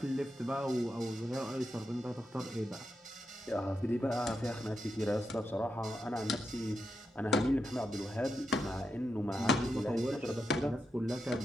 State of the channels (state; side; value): normal; both; correlation 0.86